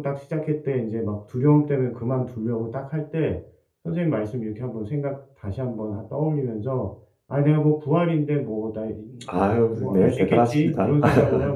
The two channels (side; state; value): both; identical; correlation 1.00